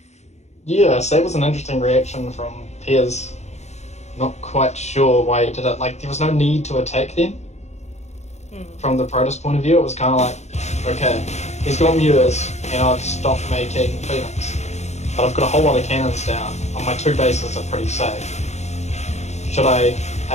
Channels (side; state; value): right; late; 0.32 ms